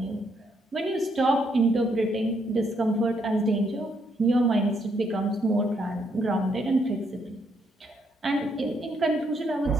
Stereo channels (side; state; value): both; normal; correlation 0.74